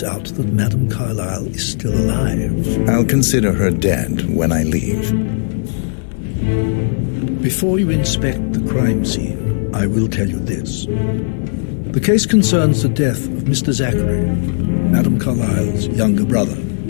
out that Madame Carlyle is still alive. I'll consider her dead when I leave. Before you inspect the crime scene, I will tell you this. The case concerns the death of Mr. Zachary, Madame Carlyle's younger brother.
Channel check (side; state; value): right; silent; digital silence